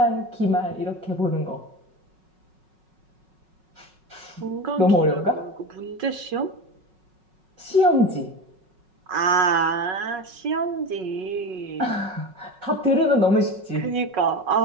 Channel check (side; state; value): left; late; 5.4 ms